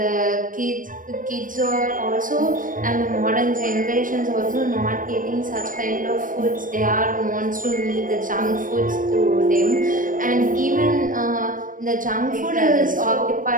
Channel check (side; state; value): left; late; 0.39 ms